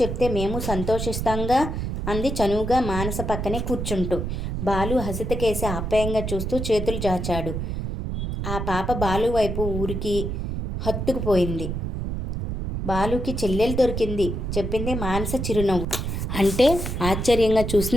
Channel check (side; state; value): right; noise; rumble, 3 dB below the sound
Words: చెప్తే మేము సంతోషిస్తాంగా అంది చనువుగా మానస పక్కనే కూర్చుంటూ. బాలు హసితకేసి ఆప్యాయంగా చూస్తూ చేతులు చాచాడు. ఆ పాప బాలు వైపు ఊరికి హత్తుకుపోయింది. బాలుకి చెల్లెలు దొరికింది చెప్పింది మానస చిరునవ్వు. అంటే ఆశ్చర్యంగా